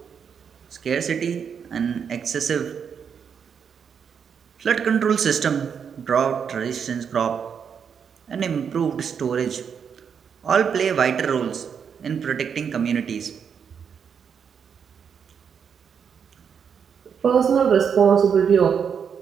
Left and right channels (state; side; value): quieter; left; 7.1 dB